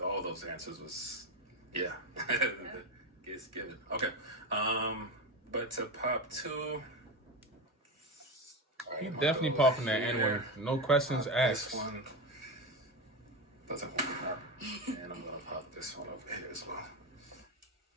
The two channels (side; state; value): both; normal; correlation 0.18